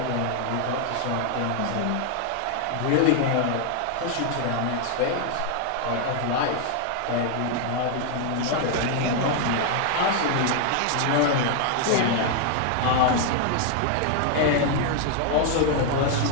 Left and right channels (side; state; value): both; different; correlation 0.00